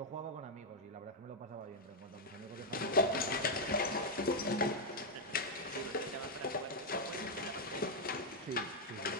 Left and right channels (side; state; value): both; normal; correlation -0.02